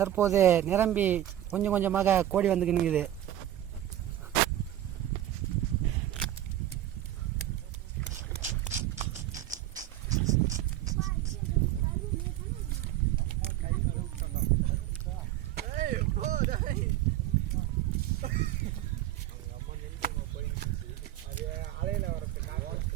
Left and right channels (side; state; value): left; quieter; 12.9 dB